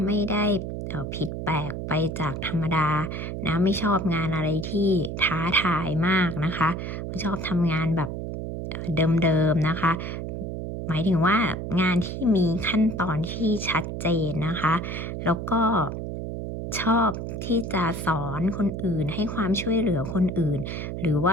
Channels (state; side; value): noise; right; hum, 5 dB below the sound